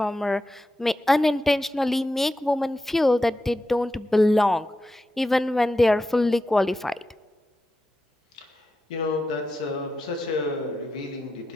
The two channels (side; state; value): both; normal; correlation 0.90